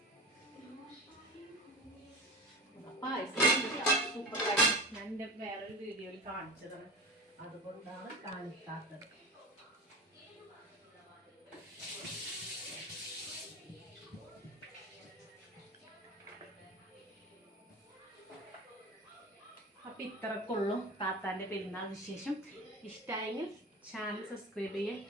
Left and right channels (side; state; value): both; normal; correlation 0.30